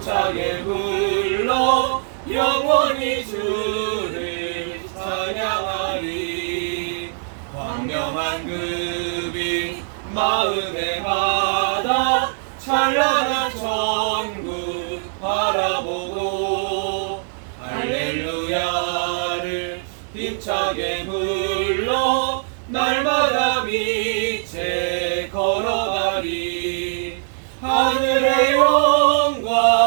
불러 영원히 주를 찬양하리. 광명한 그 빛 마음에 받아 찬란한 천국 바라보고 할렐루야를 힘차게 불러 날마다 빛에 걸어가리. 하늘의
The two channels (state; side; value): silent; left; digital silence